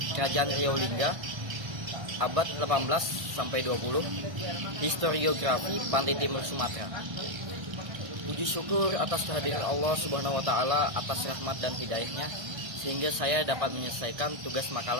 Kerajaan Riau Lingga abad 18 sampai 20, Historiografi Pantai Timur Sumatera. Puji syukur atas kehadiran Allah Subhanahu wa taala atas rahmat dan hidayahnya sehingga saya dapat menyelesaikan tugas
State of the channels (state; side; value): late; left; 1.6 ms